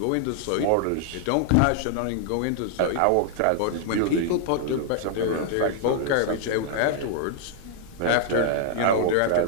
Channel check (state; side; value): different; both; correlation -0.01